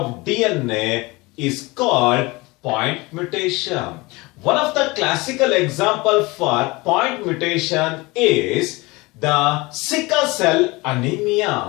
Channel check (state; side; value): quieter; right; 23.5 dB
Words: DNA is called point mutation. One of the classical examples for point mutation is the sickle cell